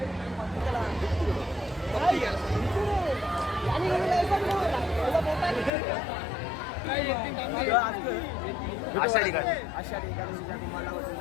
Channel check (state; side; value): drops out; right; at 5.7 s